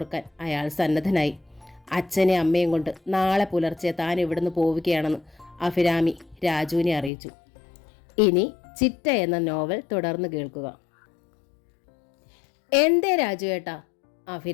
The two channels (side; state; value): right; drops out; at 7.1 s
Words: അയാൾ സന്നദ്ധനായി. അച്ഛനെ അമ്മയും കൊണ്ട് നാളെ പുലർച്ചെ താൻ ഇവിടുന്ന് പോവുകയാണെന്ന് അഭിരാമി രാജുവിനെ അറിയിച്ചു. ഇനി ചിറ്റ എന്ന നോവൽ തുടർന്ന് കേൾക്കുക. എന്തേ രാജു ഏട്ടാ?